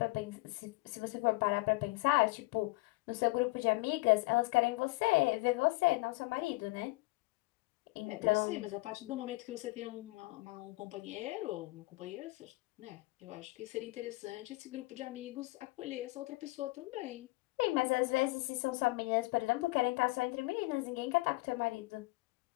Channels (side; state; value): right; quieter; 23.2 dB